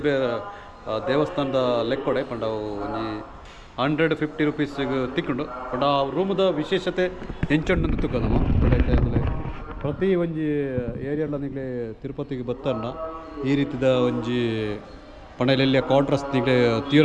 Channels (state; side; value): identical; both; correlation 1.00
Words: ದೇವಸ್ಥಾನದ ಲೆಕ್ಕೊಡೆ ಪಂಡ ಒಂಜಿ 150 ರೂಪೀಸ್ಗೆ ತಿಕ್ಕೊಂಡು ಪಂಡ ಆ ರೂಮದ ವಿಶೇಷತೆ ಹೆಂಚೊಂಡು ತುಕ್ಕದಮ್ಮ. ಪ್ರತಿ ಒಂಜಿ ಏರಿಯಾಲ ನಿಗಲೆ ತಿರುಪತಿಗೆ ಬತ್ತನ್ನ ಈ ರೀತಿದ ಒಂಜಿ ಪಂಡಲೆಲ್ಲ ಕ್ವಾರ್ಟರ್ಸ್ ನಿಗಲೆ ತೀರ